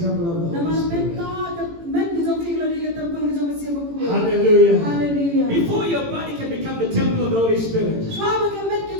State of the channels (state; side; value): late; left; 18 ms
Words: temple of the Holy Spirit. Hallelujah. Hallelujah. Before your body can become the temple of the Holy Spirit,